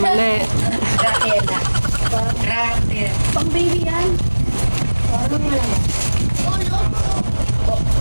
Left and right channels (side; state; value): both; inverted; correlation -1.00